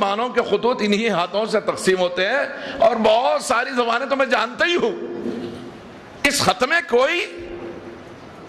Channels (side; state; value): both; identical; correlation 1.00